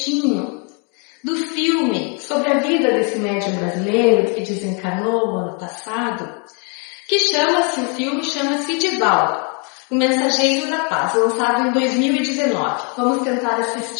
do filme sobre a vida desse médium brasileiro que desencarnou no ano passado, que o filme chama-se Divaldo, o Mensageiro da Paz, lançado em 2019. Vamos tentar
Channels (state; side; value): quieter; right; 36.6 dB